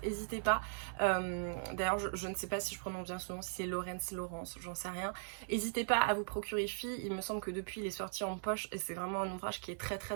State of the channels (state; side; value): silent; left; 52 dB below the other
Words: n'hésitez pas. D'ailleurs, je ne sais pas si je prononce bien son nom, si c'est Laurence, j'en sais rien. N'hésitez pas à vous procurer Filles, il me semble que depuis il est sorti en poche, et c'est vraiment un ouvrage qui est très